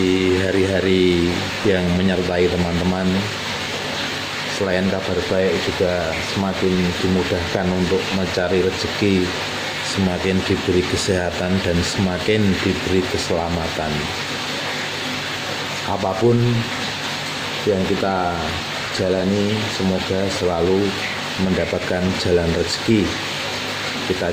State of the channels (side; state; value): both; identical; correlation 1.00